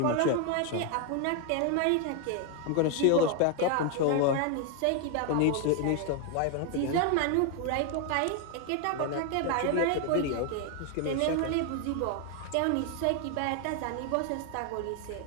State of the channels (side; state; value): both; different; correlation 0.01